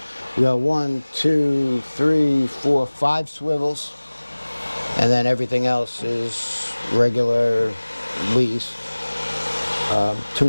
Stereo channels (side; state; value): both; inverted; correlation -1.00